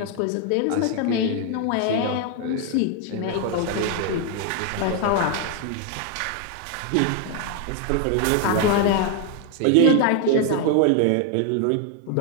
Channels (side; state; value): both; different; correlation 0.00